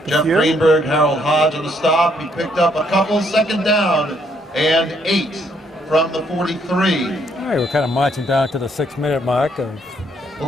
a Jeff few. Greenberg, Harold Hodge on the stop. He picked up a couple, second down and 8 from the 43. All right, we're kind of marching down to the 6-minute mark of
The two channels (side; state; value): both; normal; correlation 0.70